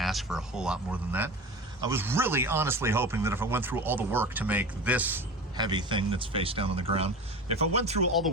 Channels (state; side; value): normal; both; correlation 0.32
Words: for a whole lot more than that. I was really honestly hoping that if I went through all the work to make this heavy thing that's face down on the ground, if I went through all the